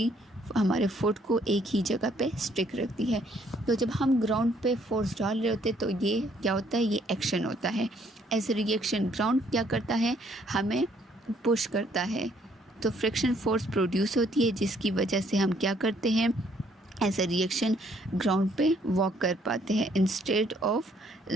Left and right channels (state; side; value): normal; both; correlation 0.66